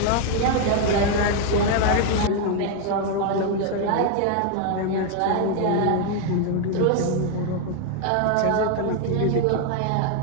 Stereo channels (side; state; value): both; different; correlation 0.00